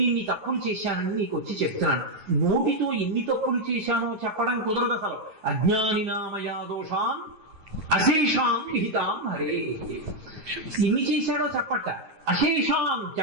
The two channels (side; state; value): left; late; 9.4 ms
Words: ఇన్ని తప్పులు చేశానని నీకు వచ్చి చెప్తున్నాను. నోటితో ఎన్ని తప్పులు చేశానో చెప్పడం కుదరదు అసలు. అజ్ఞానినామయా దోషాం అశేషాం విహితాం హరే. ఎన్ని చేశాడో చెప్పట, అశేషాం